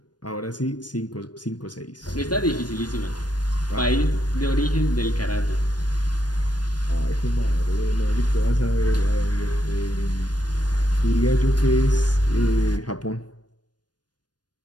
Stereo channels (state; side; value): late; right; 0.69 ms